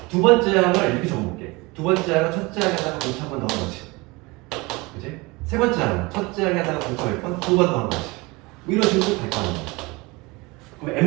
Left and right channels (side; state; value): left; quieter; 24.2 dB